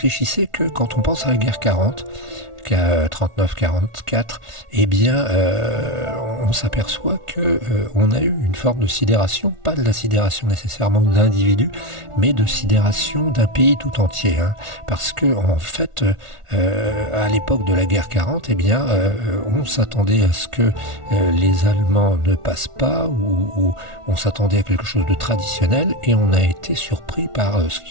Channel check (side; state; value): left; late; 1.4 ms